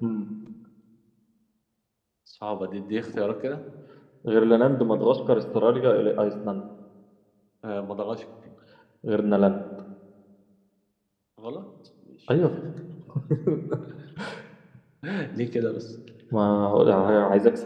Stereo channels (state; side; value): identical; both; correlation 1.00